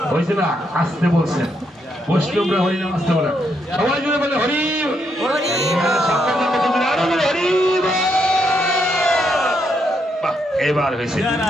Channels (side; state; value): both; normal; correlation 0.78